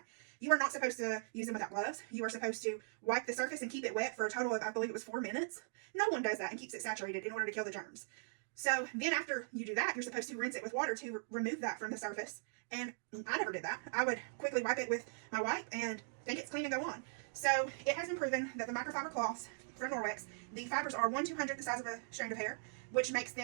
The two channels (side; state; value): left; silent; digital silence